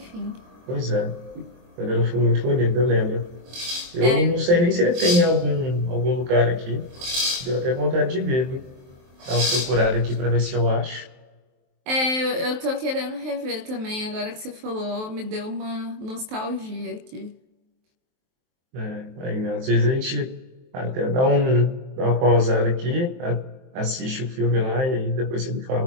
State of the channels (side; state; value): left; late; 23 ms